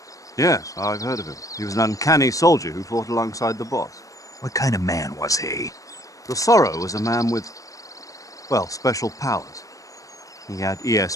Yes, I've heard of him. He was an uncanny soldier who fought alongside the boss. What kind of man was he? The Sorrow was a man with, well, special powers. He had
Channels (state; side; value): late; right; 0.16 ms